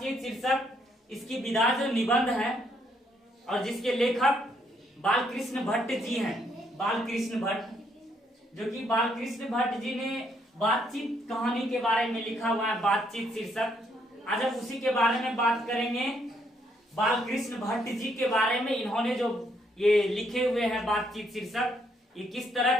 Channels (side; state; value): both; normal; correlation 0.72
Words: शीर्षक, इसकी विधा जो निबंध है और जिसके लेखक बालकृष्ण भट्ट जी हैं। बालकृष्ण भट्ट, जो कि बालकृष्ण भट्ट जी ने बातचीत कहानी के बारे में लिखा हुआ है बातचीत शीर्षक। आज हम उसी के बारे में बात करेंगे, बालकृष्ण भट्ट जी के बारे में। इन्होंने जो ये लिखे हुए हैं बातचीत शीर्षक, ये किस